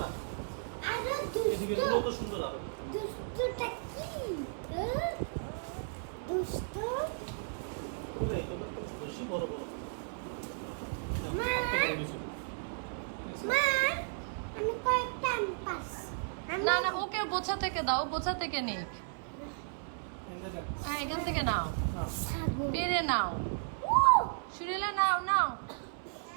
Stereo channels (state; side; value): silent; left; 55 dB below the other